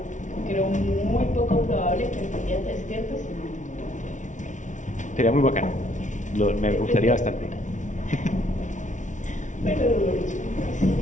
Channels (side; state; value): right; late; 0.36 ms